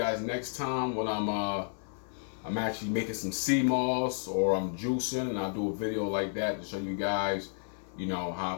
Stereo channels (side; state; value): right; silent; 57 dB below the other